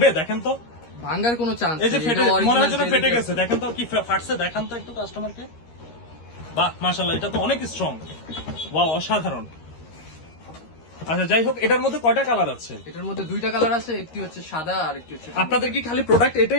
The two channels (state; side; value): late; right; 13 ms